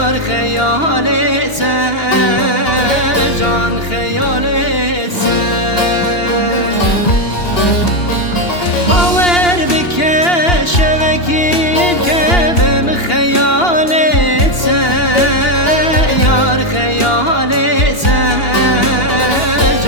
خیالت جان خیالت باور بکه شبکیم که بم خیالت یار خیالت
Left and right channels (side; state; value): right; late; 2.8 ms